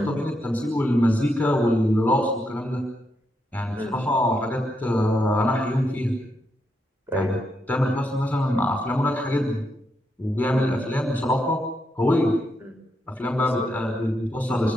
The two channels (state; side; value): normal; both; correlation 0.81